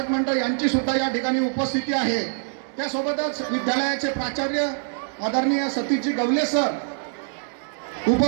मंडळ यांची सुद्धा या ठिकाणी उपस्थिती आहे। त्यासोबतच विद्यालयाचे प्राचार्य आदरणीय सतीशजी गवले सर,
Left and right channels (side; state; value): left; silent; 61 dB below the other